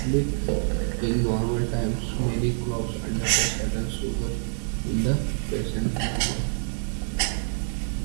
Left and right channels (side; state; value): left; silent; 55 dB below the other